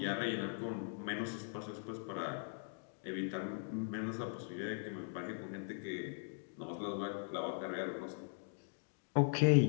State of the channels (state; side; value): silent; right; digital silence